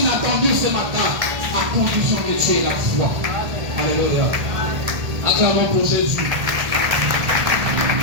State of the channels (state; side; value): late; left; 1.3 ms